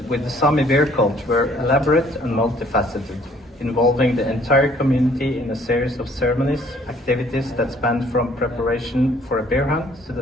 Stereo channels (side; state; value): both; normal; correlation 0.60